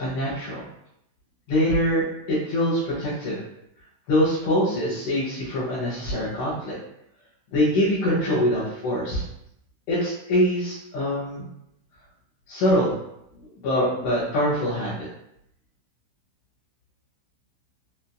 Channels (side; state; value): right; late; 16 ms